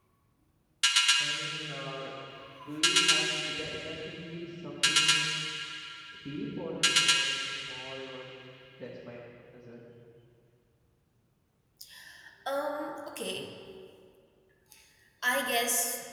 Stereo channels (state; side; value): identical; both; correlation 1.00